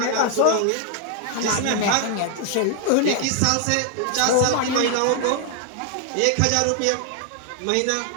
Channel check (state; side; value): different; both; correlation 0.00